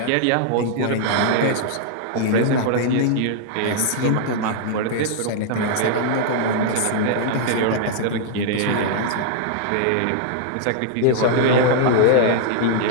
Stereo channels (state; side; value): different; both; correlation -0.01